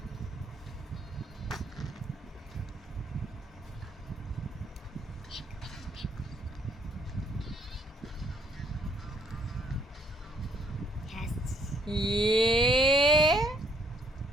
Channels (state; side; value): normal; both; correlation 0.67